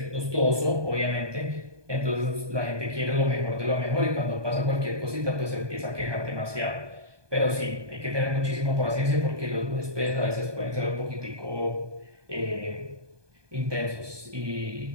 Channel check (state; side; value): late; left; 1.2 ms